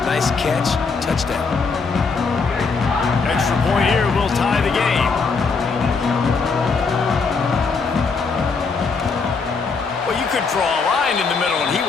nice catch, touchdown. Extra point here will tie the game. Well, you could draw a line in the middle, and he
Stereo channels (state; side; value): quieter; right; 4.7 dB